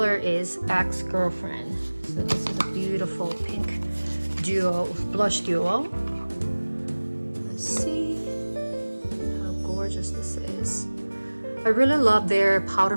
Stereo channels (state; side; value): inverted; both; correlation -1.00